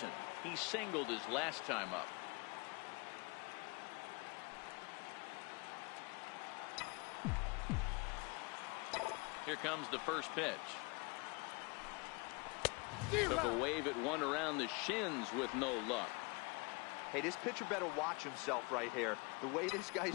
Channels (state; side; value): quieter; right; 29.5 dB